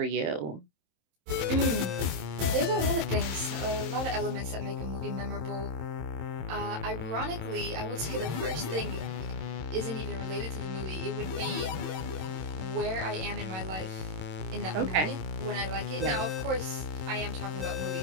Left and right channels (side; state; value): left; late; 27 ms